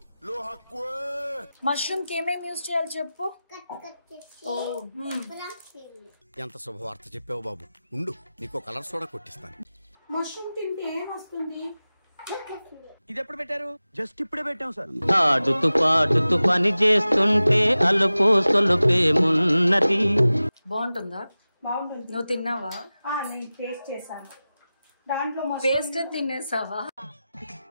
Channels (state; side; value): inverted; both; correlation -0.96